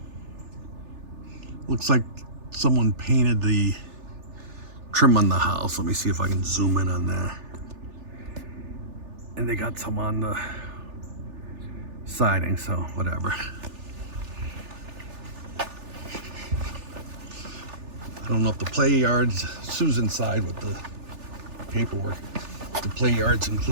Looks like someone painted the trim on the house. Let me see if I can zoom in on that. And they got some on the siding, so whatever. I don't know if the play yard's, Sue's inside with the paperwork, if the play yard's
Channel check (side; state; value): left; late; 3.4 ms